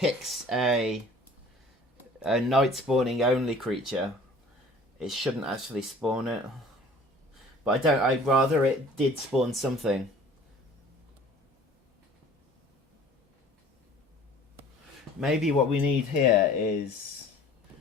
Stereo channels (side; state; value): both; normal; correlation 0.49